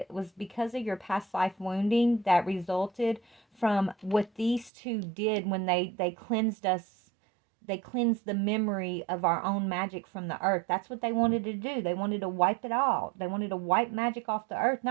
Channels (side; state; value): left; drops out; at 4.7 s